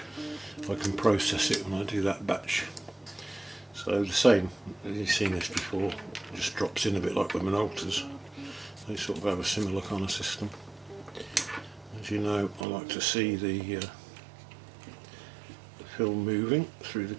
can process it when I do that batch. So the same, you've seen this before, it just drops in a bit like with Minoltas. They sort of have a similar kind of system. As you know, I like to see the film moving through the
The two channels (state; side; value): drops out; left; at 12.7 s